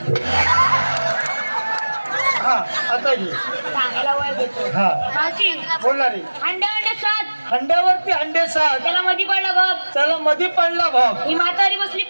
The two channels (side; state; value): both; inverted; correlation -1.00